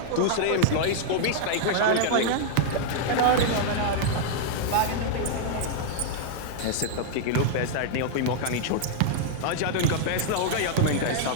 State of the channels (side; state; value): both; different; correlation -0.01